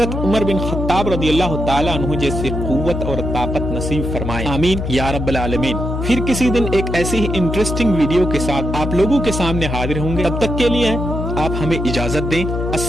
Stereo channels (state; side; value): noise; left; hum, 3 dB below the sound